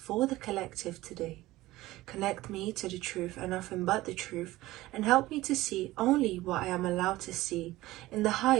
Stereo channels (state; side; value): quieter; left; 17.7 dB